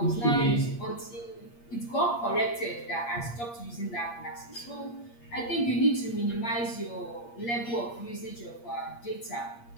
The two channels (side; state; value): right; late; 8.5 ms